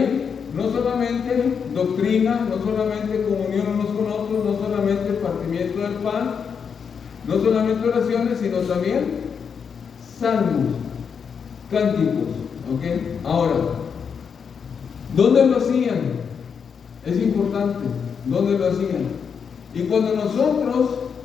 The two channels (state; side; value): quieter; right; 6.6 dB